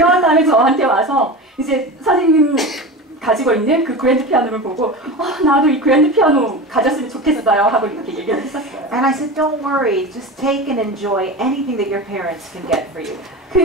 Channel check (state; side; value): normal; both; correlation 0.28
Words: 다음에 저한테 와서 이제 선생님 가지고 있는 그 그랜드 피아노를 보고 나도 이 그랜드 피아노 가졌으면 좋겠어요 하고 이렇게 얘기를 했었어요. And I said, don't worry, just take and enjoy anything that your parents can get for you.